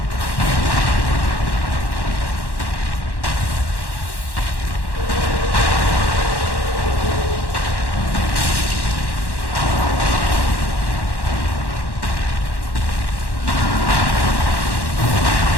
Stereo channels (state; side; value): late; right; 1.1 ms